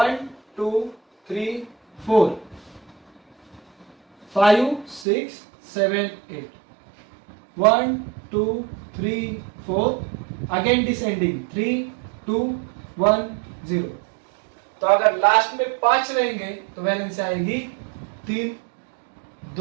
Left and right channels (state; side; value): drops out; left; at 5.1 s